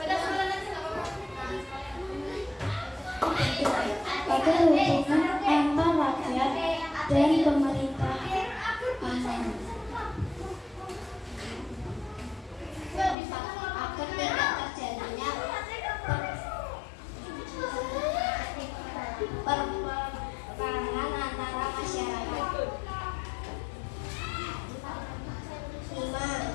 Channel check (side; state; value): right; drops out; at 13.2 s